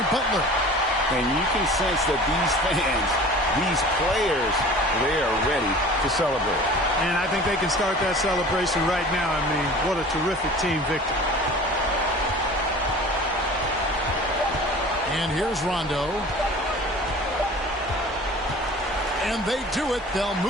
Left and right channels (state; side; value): normal; both; correlation 0.42